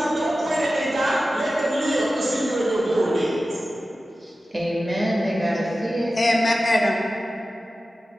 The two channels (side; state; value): both; normal; correlation 0.94